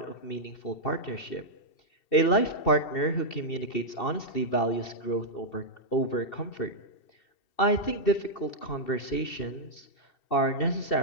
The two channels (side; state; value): right; late; 2.7 ms